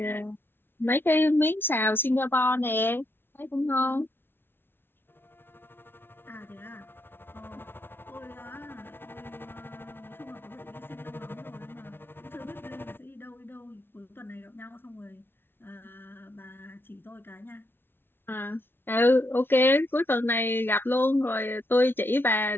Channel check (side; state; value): right; late; 0.11 ms